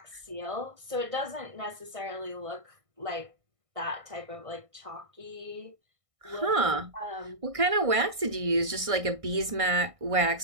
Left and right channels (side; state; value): left; late; 1.6 ms